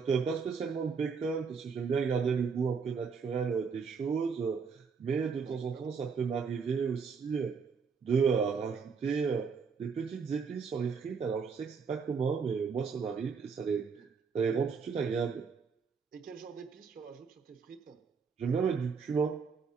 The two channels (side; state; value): left; quieter; 5.6 dB